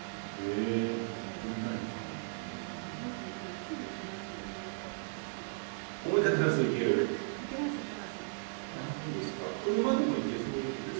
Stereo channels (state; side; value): silent; left; digital silence